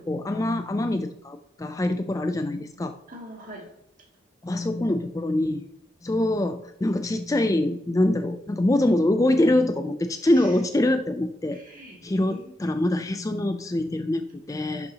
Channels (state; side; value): normal; both; correlation 0.87